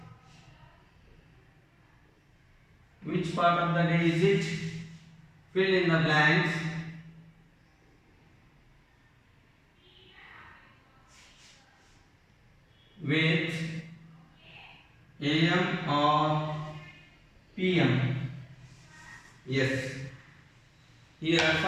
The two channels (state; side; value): identical; both; correlation 1.00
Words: Which part of the day is it? Fill in the blanks with AM or PM. Yes. Here